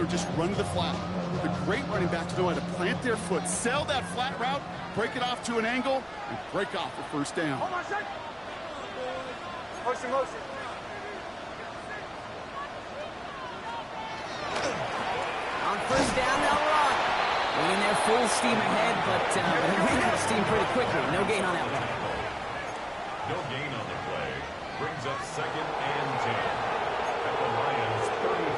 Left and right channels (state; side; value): identical; both; correlation 1.00